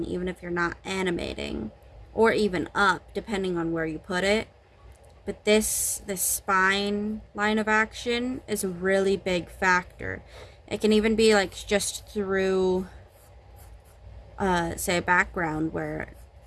even if you're not animating, or even up, depending on where you put it. But this spine line of action is a really big factor. It can even be like just through, say, a background where,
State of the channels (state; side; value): identical; both; correlation 1.00